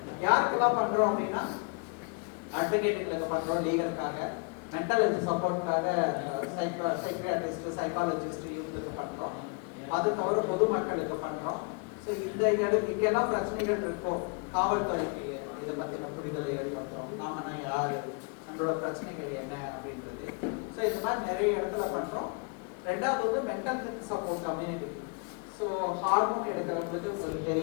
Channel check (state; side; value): quieter; right; 33.2 dB